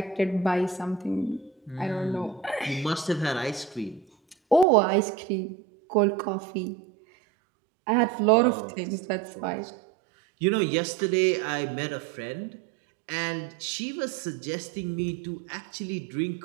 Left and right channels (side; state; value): left; drops out; at 4.7 s